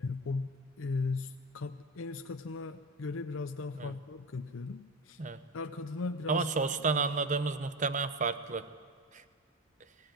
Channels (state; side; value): normal; both; correlation 0.25